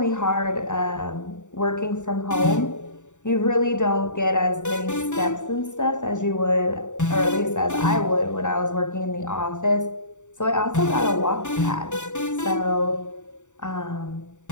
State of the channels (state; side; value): late; right; 0.85 ms